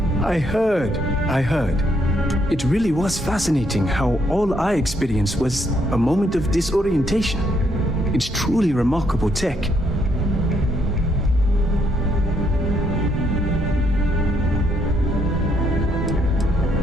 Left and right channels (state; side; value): normal; both; correlation 0.73